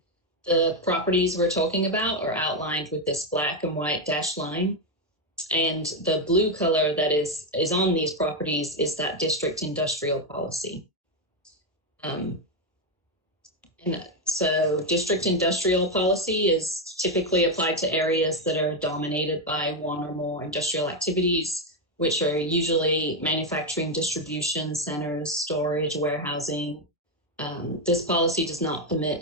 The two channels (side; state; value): both; normal; correlation 0.06